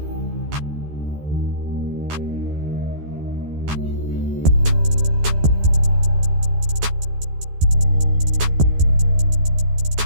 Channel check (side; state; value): left; late; 13 ms